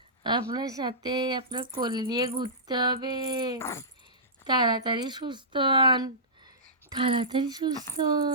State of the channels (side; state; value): both; normal; correlation -0.19